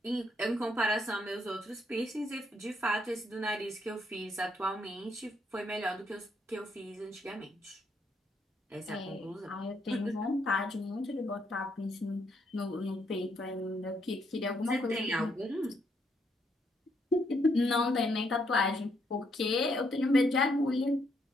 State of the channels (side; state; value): both; normal; correlation 0.74